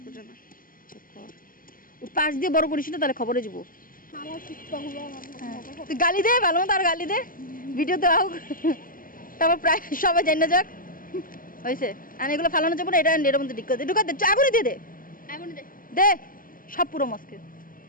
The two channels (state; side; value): late; right; 0.41 ms